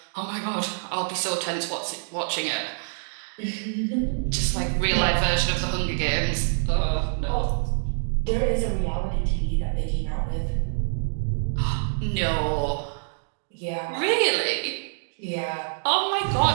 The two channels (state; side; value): silent; left; digital silence